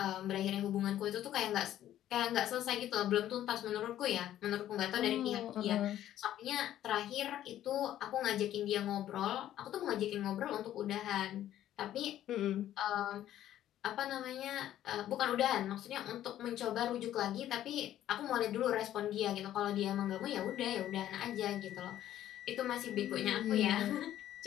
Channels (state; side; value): quieter; right; 12.3 dB